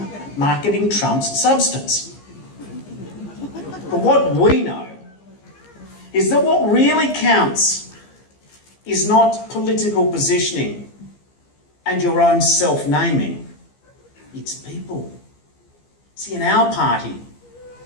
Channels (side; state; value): right; late; 15 ms